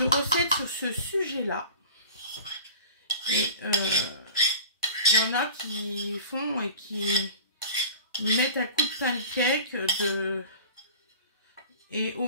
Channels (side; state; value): both; inverted; correlation -0.40